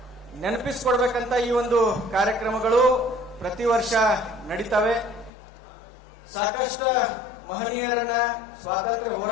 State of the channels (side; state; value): right; drops out; at 5.3 s